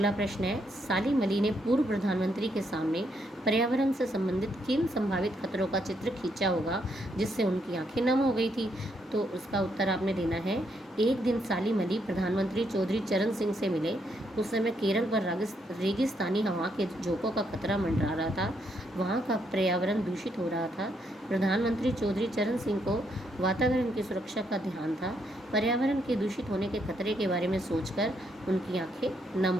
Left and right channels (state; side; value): normal; both; correlation 0.76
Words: प्रश्न है, सालिम अली ने पूर्व प्रधानमंत्री के सामने पर्यावरण से संबंधित किन संभावित खतरों का चित्र खींचा होगा जिससे उनकी आंखें नम हो गई थी? तो उसका उत्तर आपने देना है। एक दिन सालिम अली प्रधानमंत्री चौधरी चरण सिंह से मिले। उस समय केरल पर रेगिस्तानी हवा के झोंकों का खतरा मंडरा रहा था। वहाँ का पर्यावरण दूषित हो रहा था। प्रधानमंत्री चौधरी चरण सिंह को वातावरण की सुरक्षा का ध्यान था। पर्यावरण के दूषित होने के खतरे के बारे में सोचकर उनकी आंखें नम